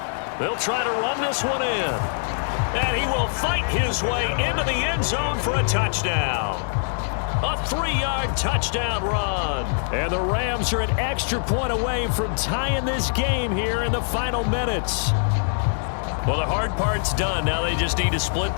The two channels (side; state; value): right; silent; digital silence